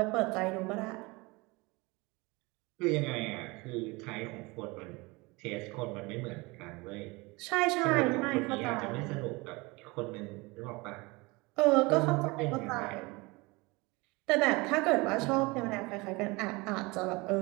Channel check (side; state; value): left; quieter; 24.7 dB